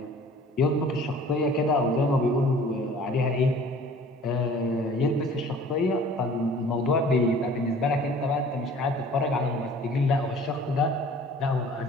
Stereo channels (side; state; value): both; normal; correlation 0.49